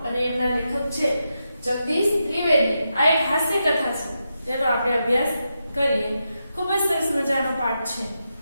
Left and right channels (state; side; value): inverted; both; correlation -0.86